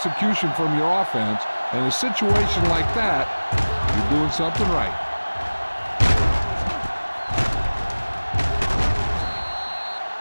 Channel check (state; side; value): inverted; both; correlation -1.00